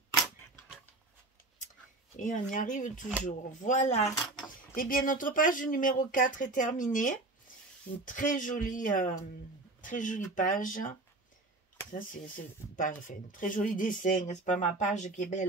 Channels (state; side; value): quieter; left; 3.0 dB